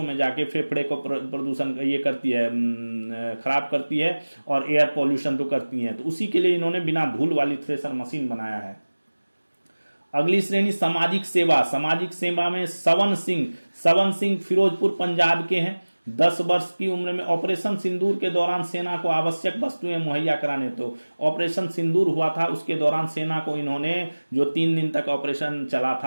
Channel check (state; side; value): inverted; both; correlation -1.00